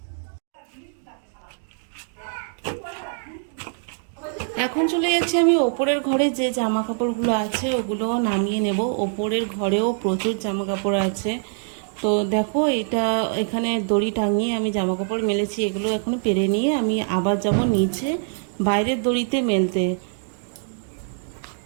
এখন চলে যাচ্ছি আমি ওপরের ঘরে, যে জামা কাপড়গুলো আছে ওগুলো নামিয়ে নেব। ওপরের ঘরেও প্রচুর জামা কাপড় আছে। তো দেখো এটা এখানে দড়ি টাঙিয়ে আমি জামা কাপড় মেলেছি, এগুলো এখন পেরে নিয়ে আমি আবার যাব নিচে বাইরের দড়িতে মেলতে।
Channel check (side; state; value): left; silent; 63 dB below the other